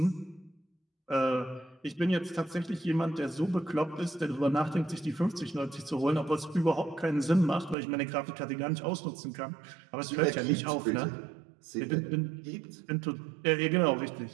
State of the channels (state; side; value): drops out; left; at 7.8 s